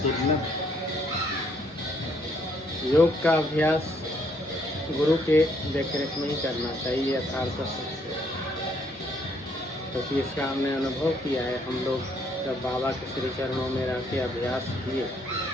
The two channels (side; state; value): both; normal; correlation 0.69